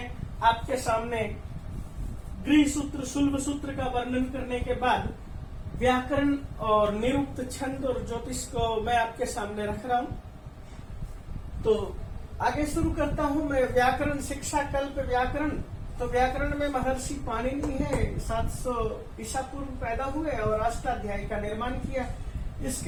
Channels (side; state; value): both; identical; correlation 1.00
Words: आपके सामने गृह सूत्र, शुल्भ सूत्र का वर्णन करने के बाद व्याकरण और निरुक्त, छंद और ज्योतिष को मैं आपके सामने रख रहा हूं। तो आगे शुरू करता हूं मैं। व्याकरण शिक्षा, कल्प व्याकरण। तो व्याकरण में महर्षि पाणिनि है, 700 ईसा पूर्व पैदा हुए और अष्टाध्यायी का निर्माण किया।